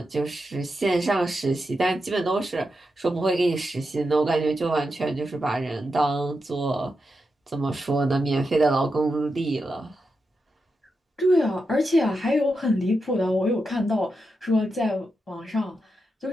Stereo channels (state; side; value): normal; both; correlation 0.87